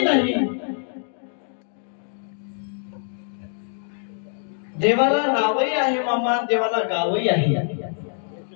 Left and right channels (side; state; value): right; silent; digital silence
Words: नाही, देवाला नावही आहे मामा, देवाला गावही आहे.